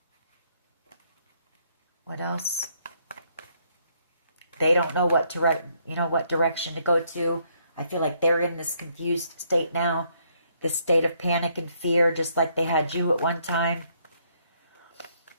What else? They don't know what direction to go to. I feel like they're in this confused state now, this state of panic and fear, just like they had you at one time.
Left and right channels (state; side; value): inverted; both; correlation -0.71